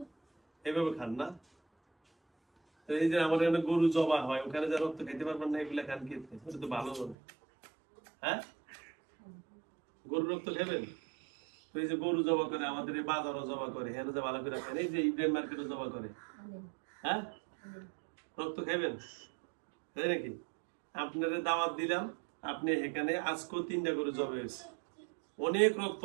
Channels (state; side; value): drops out; left; at 7.2 s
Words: এভাবে খান না? এই যে আমার এখানে গরু জবা হয়, ওখানে যা রক্ত খাইতে পারবেন না, এগুলা খান খেতে, ওটা তো ভালো হবে। হ্যাঁ, গরুর রক্ত খাবেন? তো এই যে গরু জবা করে, আমাদের এই বাজারও জবা করে, হ্যাঁ যে ভালো করে খান, এই যে ইব্রাহিম মার্কেটও জবা করে। হ্যাঁ, রক্ত খাবেন তাই নাকি? আপনার দাওয়াত দিলাম, আপনি এখানে আজকেও 3টা গরু জবা হয়েছে, অনেক রক্ত